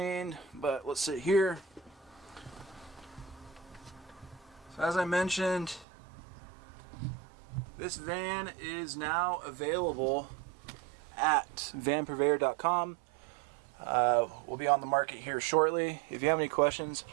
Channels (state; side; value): drops out; left; at 5.9 s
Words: but let's sit here. So as I mentioned, this van is now available at vanpurveyor.com. We'll be on the market here shortly. If you have any questions,